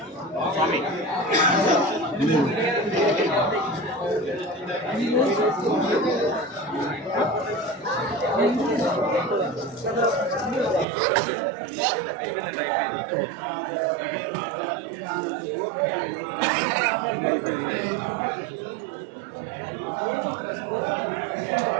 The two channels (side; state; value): left; drops out; at 10.9 s